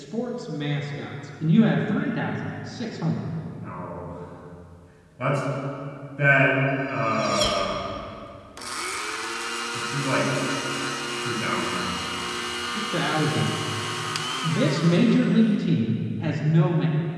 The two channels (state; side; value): identical; both; correlation 1.00